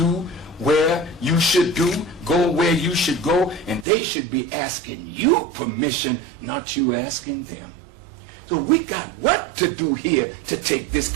where you should do, go where you should go, and they should be asking you permission, not you asking them. So we got work to do here to take this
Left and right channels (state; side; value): drops out; left; at 3.9 s